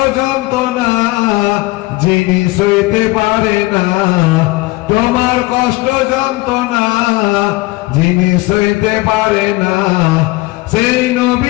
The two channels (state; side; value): quieter; right; 20.6 dB